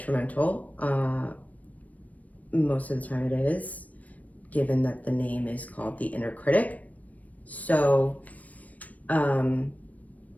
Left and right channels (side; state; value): right; late; 0.071 ms